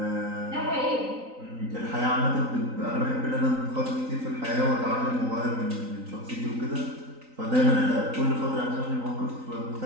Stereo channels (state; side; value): late; left; 3.9 ms